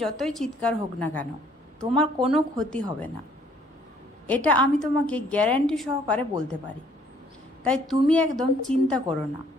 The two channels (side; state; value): both; normal; correlation 0.62